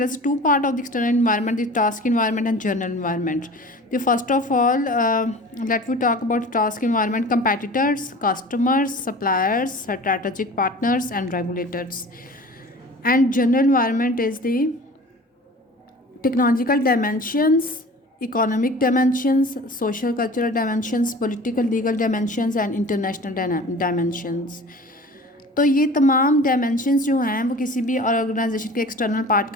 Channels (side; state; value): both; normal; correlation 0.41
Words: is two part of the external environment: the task environment and general environment. The first of all, let we talk about task environment: competitors, customers, suppliers, strategic partners, and regulators. And general environment is the technological dimensions, economic dimensions, social cultural dimensions, political legal dimensions, and international dimensions. तो ये तमाम dimensions जो हैं वो किसी भी organisation के external part